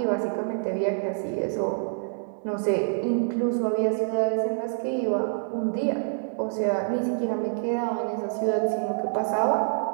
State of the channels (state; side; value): silent; left; digital silence